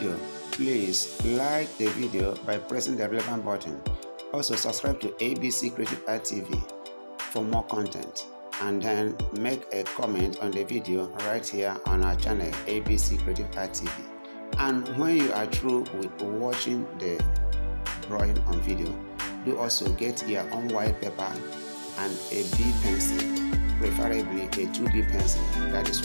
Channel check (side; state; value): both; inverted; correlation -1.00